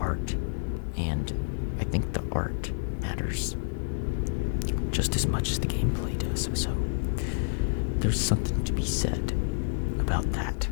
and I think the art matters just as much as the gameplay does, so there's something to be said about that.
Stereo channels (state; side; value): silent; right; digital silence